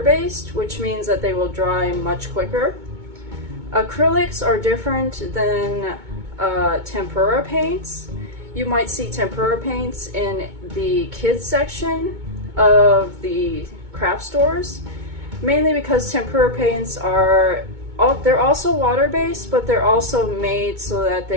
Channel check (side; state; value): left; late; 2.2 ms